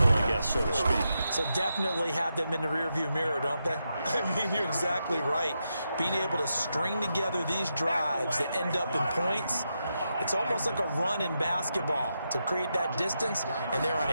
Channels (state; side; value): inverted; both; correlation -0.85